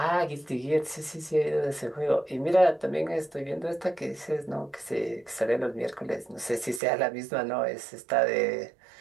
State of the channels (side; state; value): left; drops out; at 6.8 s